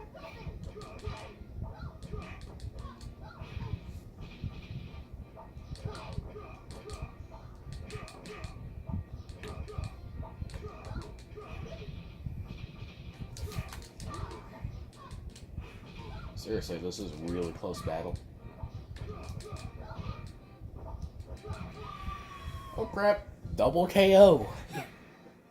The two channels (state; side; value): identical; both; correlation 1.00